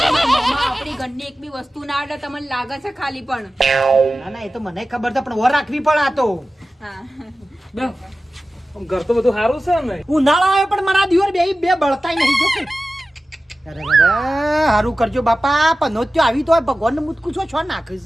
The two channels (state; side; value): normal; both; correlation 0.95